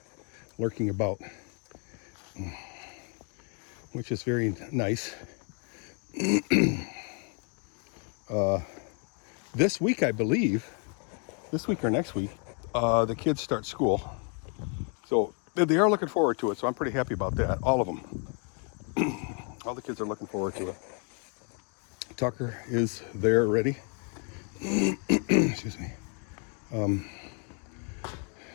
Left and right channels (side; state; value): right; quieter; 39.2 dB